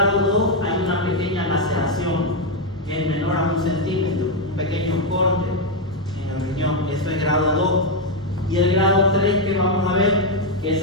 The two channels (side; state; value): left; noise; rumble, 30 dB below the sound